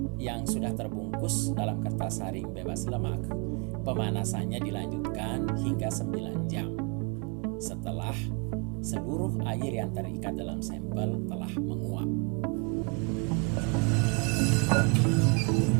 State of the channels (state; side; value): quieter; left; 33.6 dB